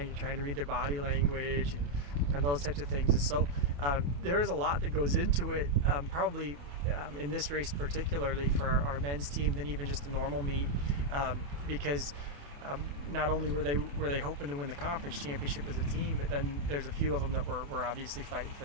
You're trying to read their body language and those types of things. And so there is a lot that goes into it, probably in this race particularly for our men's team than even just a normal meet, because not only were they hoping to win the conference championship as a team, but then there's a few of them that were obviously fighting for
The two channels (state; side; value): late; left; 28 ms